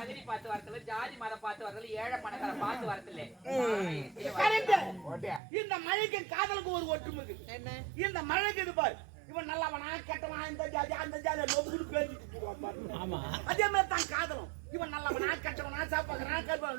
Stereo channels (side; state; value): left; drops out; at 5.4 s